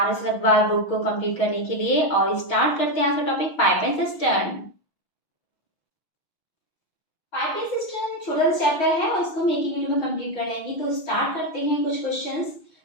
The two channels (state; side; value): late; right; 6.2 ms